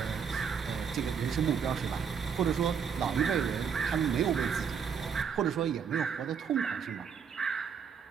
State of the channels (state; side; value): quieter; left; 6.9 dB